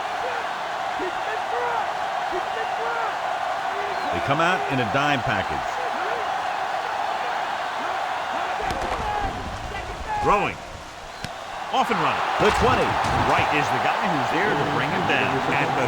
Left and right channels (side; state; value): both; identical; correlation 1.00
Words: They come out in a dime package. Throwing. Off and running. The 20. Wright is the guy who's there to bring him down at the